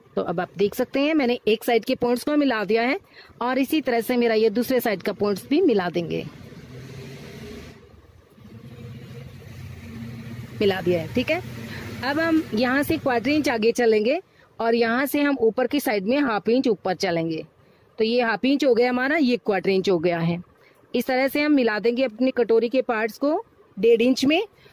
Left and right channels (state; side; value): identical; both; correlation 1.00